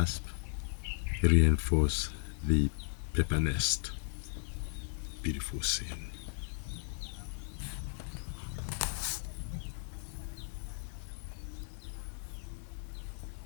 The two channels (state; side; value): silent; right; digital silence